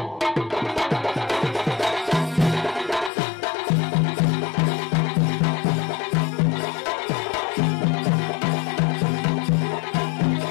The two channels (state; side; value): drops out; right; at 3.1 s